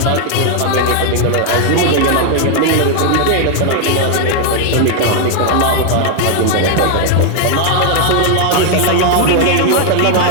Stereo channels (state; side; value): different; both; correlation 0.00